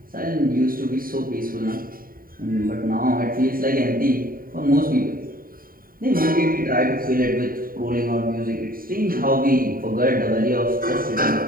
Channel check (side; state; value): left; late; 0.41 ms